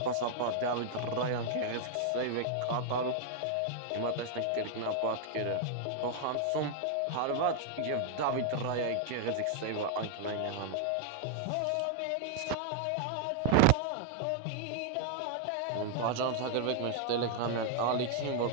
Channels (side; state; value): both; different; correlation 0.00